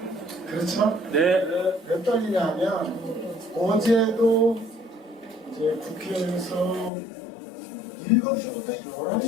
그렇죠? 네. 왜 떨리냐면 어제도 이제 국회에서 7시부터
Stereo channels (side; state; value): right; drops out; at 6.9 s